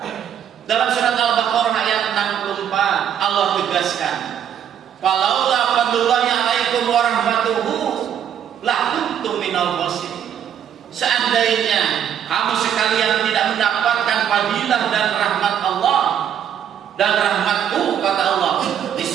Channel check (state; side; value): quieter; left; 9.2 dB